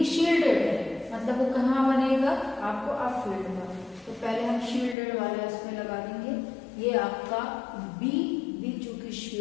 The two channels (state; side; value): drops out; right; at 5.0 s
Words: शील्डेड है मतलब वो कहाँ बनेगा आपको अप फील्ड में, तो पहले हम शील्डेड वाला इसमें लगा देंगे, ये आपका बी चूंकि